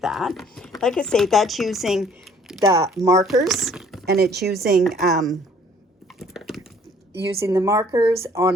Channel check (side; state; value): both; normal; correlation 0.58